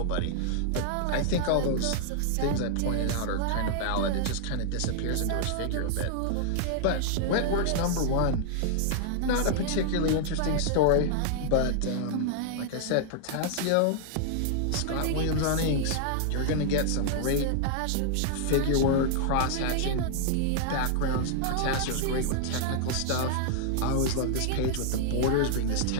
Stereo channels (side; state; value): both; different; correlation -0.01